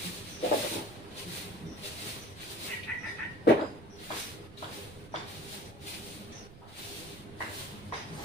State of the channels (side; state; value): right; noise; rumble, 17 dB below the sound